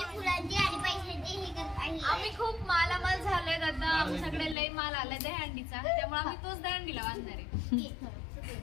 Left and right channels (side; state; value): right; drops out; at 4.5 s